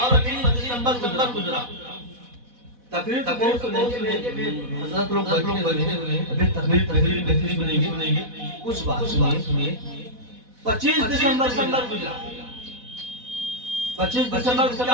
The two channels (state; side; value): late; left; 4.1 ms